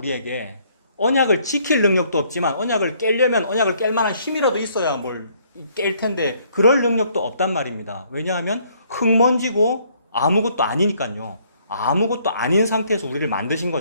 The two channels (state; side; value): inverted; both; correlation -0.65